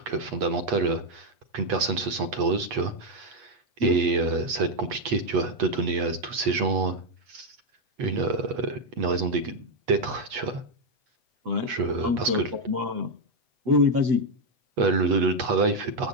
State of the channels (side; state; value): left; late; 8.2 ms